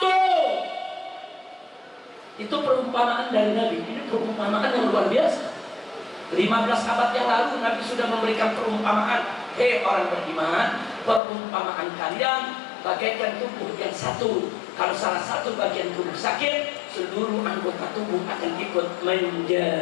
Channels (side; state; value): right; drops out; at 11.2 s